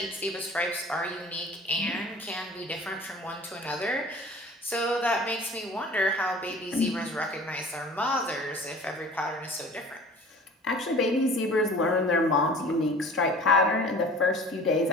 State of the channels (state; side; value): normal; both; correlation 0.44